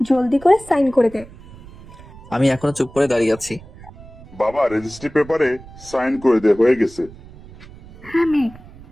জলদি করে সাইন করে দে। আমি এখনো চুপ করে দাঁড়িয়ে আছি। বাবা রেজিস্ট্রি পেপারে সাইন করে দে, হয়ে গেছে। হ্যাঁ মেয়ে,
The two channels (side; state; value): right; noise; rumble, 20 dB below the sound